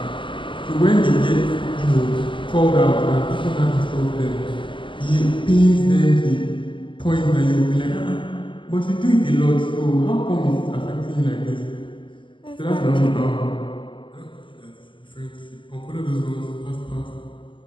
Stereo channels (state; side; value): late; right; 0.24 ms